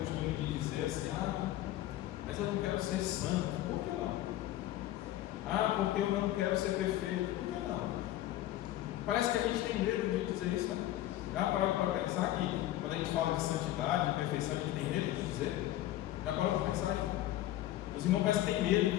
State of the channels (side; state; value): right; quieter; 14.2 dB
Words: de dizer assim: mas eu não quero ser santo. Por que não? Ah, porque eu não quero ser perfeito. Por que não? Parece que a gente tem medo de dizer isso, né? Já parou para pensar que quando a gente fala de santidade, de perfeição, a gente tem medo de dizer? Já parou para pensar aí? Os irmãos parecem que têm medo